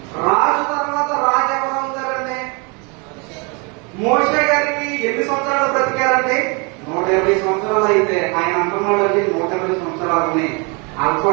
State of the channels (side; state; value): left; quieter; 31.7 dB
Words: రాజు తర్వాత రాజు ఎవరు అవుతారండి? మోషే గారికి ఎన్ని సంవత్సరాలు బ్రతికారండి? 120 సంవత్సరాలు. అయితే ఆయన అంటున్నాడు అండి 120 సంవత్సరాలని